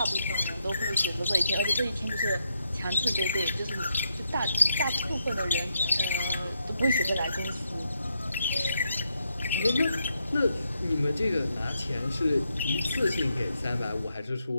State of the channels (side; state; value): both; inverted; correlation -0.80